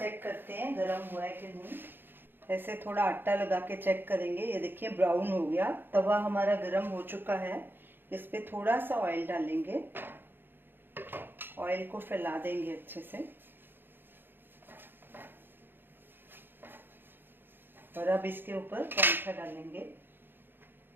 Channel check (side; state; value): left; late; 0.099 ms